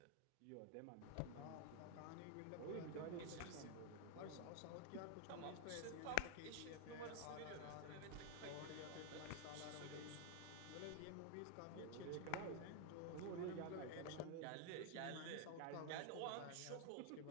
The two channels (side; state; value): both; different; correlation 0.01